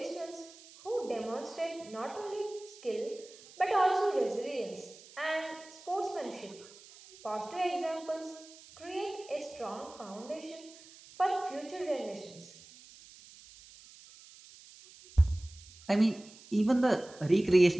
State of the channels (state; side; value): noise; right; hiss, 21 dB below the sound